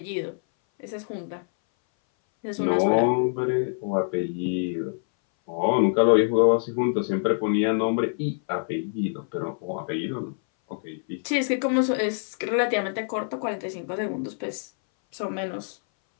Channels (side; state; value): right; silent; 59 dB below the other